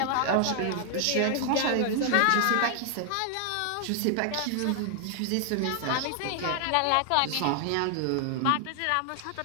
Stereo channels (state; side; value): different; both; correlation 0.00